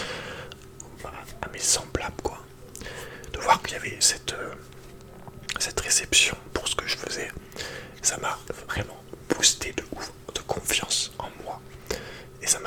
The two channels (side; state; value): both; identical; correlation 1.00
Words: à mes semblables, quoi. De voir qu'il y avait cette réception pour ce que je faisais, ça m'a vraiment boosté de ouf, de confiance en moi. Et ça